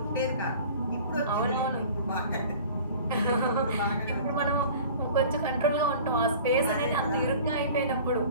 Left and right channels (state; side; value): inverted; both; correlation -0.44